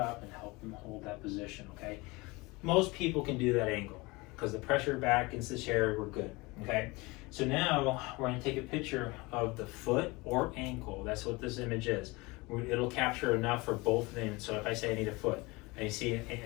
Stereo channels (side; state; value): right; quieter; 24.1 dB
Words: and help them hold that position, okay? Most people can do that angle because the pressure back against the chair, we're good, okay? So now we're going to take a picture of the foot or ankle. That's what this image is. It'll capture enough for both of them. So if I say I need a foot, I see